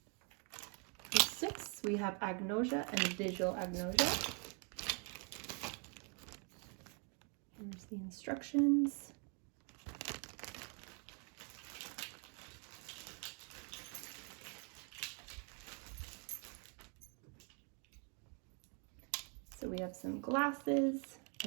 For 6, we have agnosia and visual agnosia. Here's the instructions. So we have some glasses,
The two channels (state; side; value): quieter; left; 37.8 dB